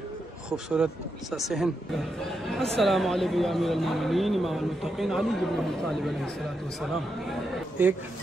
खूबसूरत सा सहन। अस्सलामु अलैकुम या अमीरुल मोमिनीन इमामुल मुत्तक़ीन अली इब्न अबी तालिब अलैहिस्सलातु वस्सलाम। एक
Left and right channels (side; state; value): both; normal; correlation 0.84